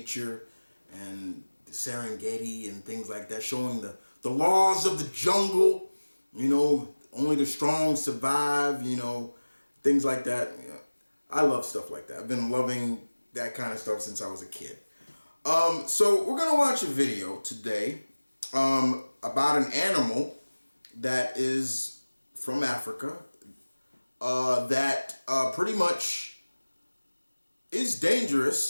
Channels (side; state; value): both; inverted; correlation -1.00